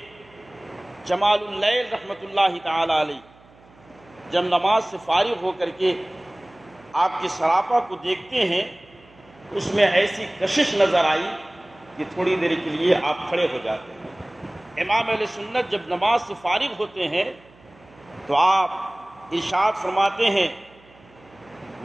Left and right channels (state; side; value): noise; right; hum, 27 dB below the sound